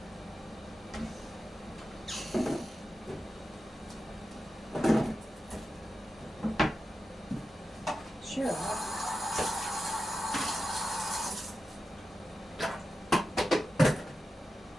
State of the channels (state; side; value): normal; both; correlation 0.91